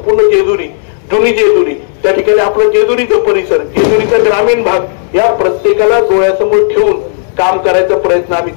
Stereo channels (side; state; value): right; silent; digital silence